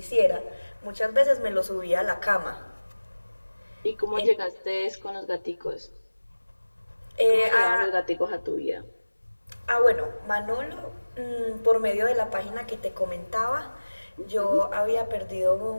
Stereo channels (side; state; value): both; inverted; correlation -1.00